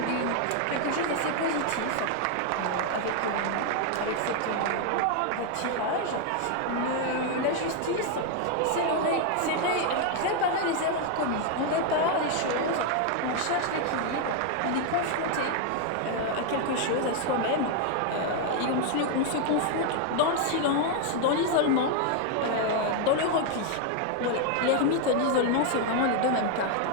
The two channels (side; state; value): both; different; correlation 0.00